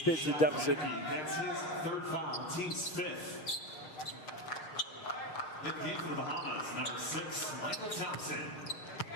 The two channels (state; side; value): late; right; 6.3 ms